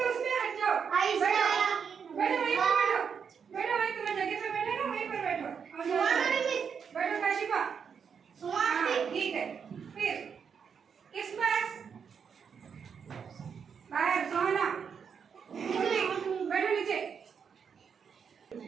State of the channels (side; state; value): left; quieter; 6.7 dB